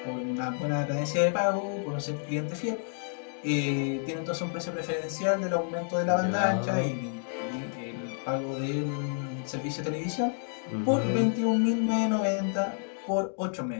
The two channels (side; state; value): right; silent; digital silence